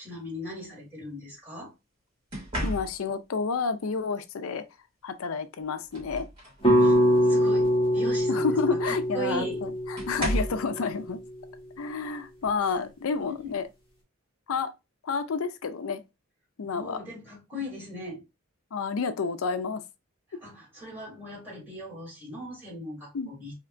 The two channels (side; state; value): both; normal; correlation 0.40